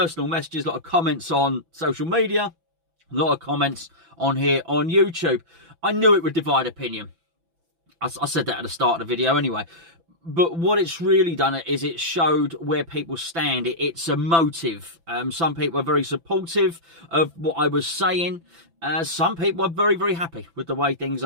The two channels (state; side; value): late; left; 6.0 ms